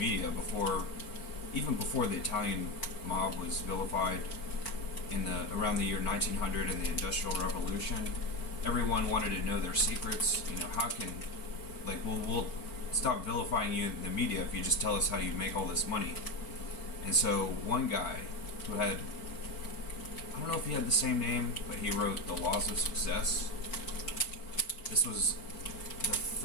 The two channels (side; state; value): right; late; 4.5 ms